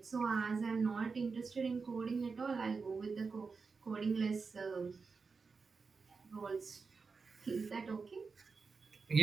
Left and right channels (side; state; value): left; quieter; 4.8 dB